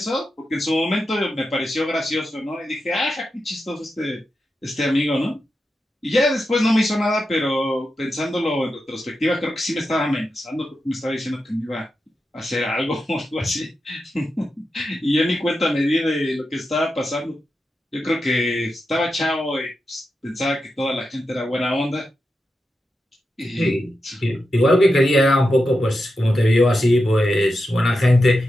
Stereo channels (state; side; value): normal; both; correlation 0.89